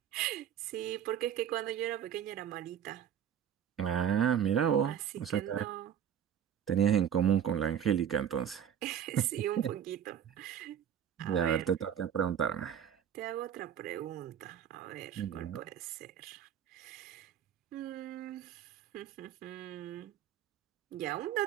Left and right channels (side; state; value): left; quieter; 9.3 dB